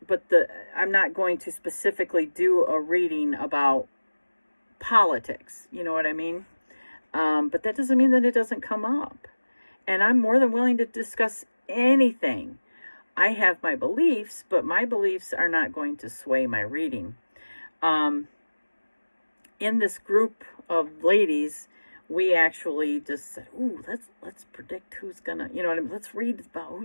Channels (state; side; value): inverted; both; correlation -1.00